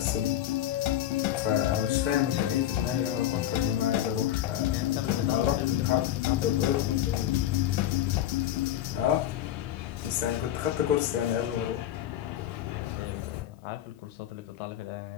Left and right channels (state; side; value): quieter; right; 12.1 dB